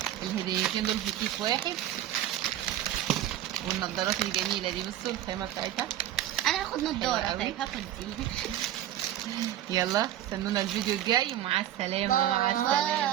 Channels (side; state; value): left; quieter; 12.4 dB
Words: الهديتين دول في كيس واحد. والنضارات الجميله دي بصوا الخامه بتاعتها. انا هاخد نضاره. حلوة قوي. طيب هاخد دي. يلا استنونا الفيديو الجاي ومع السلامه. مع